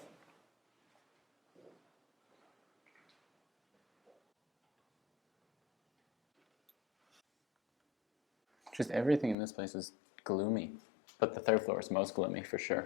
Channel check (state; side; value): drops out; right; at 9.3 s